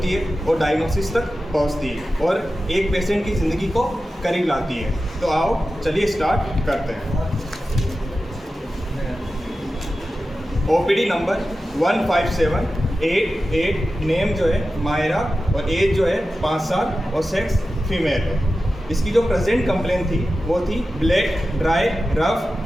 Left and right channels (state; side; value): normal; both; correlation 0.93